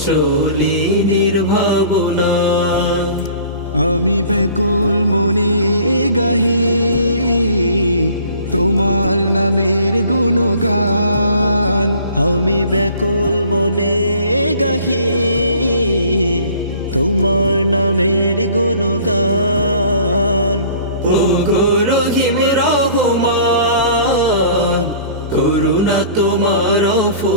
চলি নির্ভাবনায়। আমি ব্যাকুল মনে গাহি তোমার নামের গুণগান। আমি ব্যাকুল মনে গাহি তোমার নামের গুণগান। ও গো রহিম রহমান, করুণা তোমার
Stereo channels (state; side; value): inverted; both; correlation -0.50